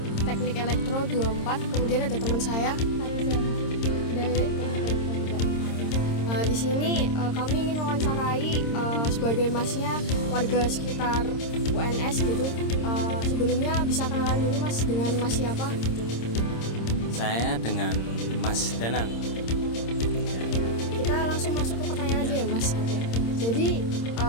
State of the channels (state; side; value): late; right; 26 ms